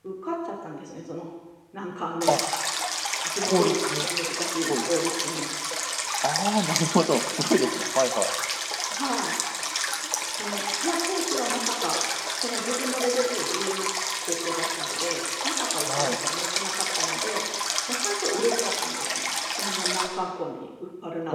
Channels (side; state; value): both; identical; correlation 1.00